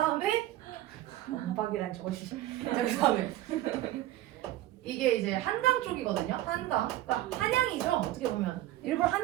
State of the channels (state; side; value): quieter; left; 14.5 dB